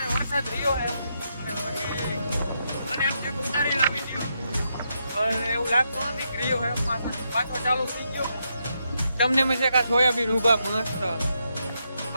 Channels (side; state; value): both; inverted; correlation -0.81